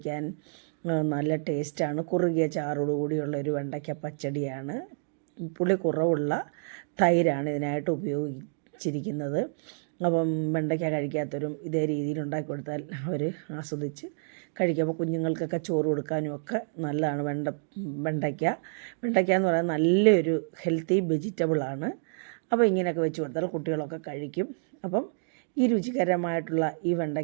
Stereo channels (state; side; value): silent; left; digital silence